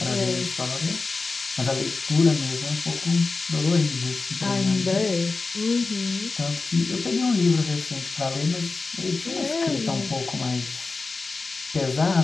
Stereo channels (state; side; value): quieter; right; 3.9 dB